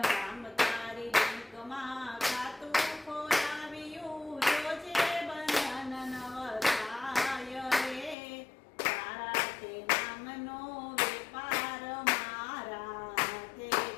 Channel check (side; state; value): right; drops out; at 8.2 s